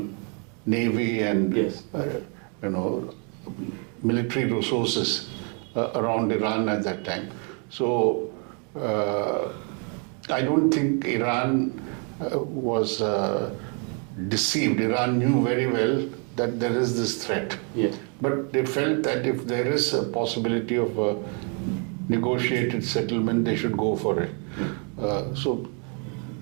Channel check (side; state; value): left; quieter; 38.1 dB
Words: navy and military resources around Iran at that time. So I don't think Iran was deceived. Iran knew very well that there is this threat. Yes. But they felt that if there is a possibility of a negotiated settlement, they should go for it. So